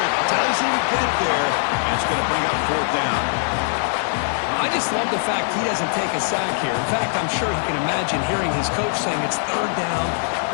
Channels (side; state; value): right; silent; digital silence